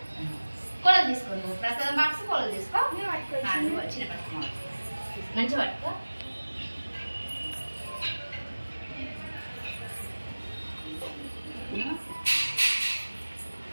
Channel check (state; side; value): inverted; both; correlation -1.00